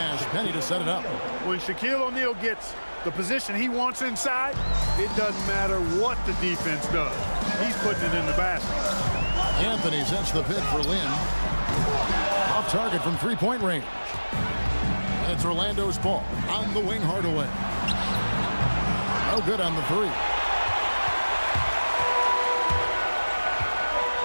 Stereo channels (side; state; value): both; inverted; correlation -1.00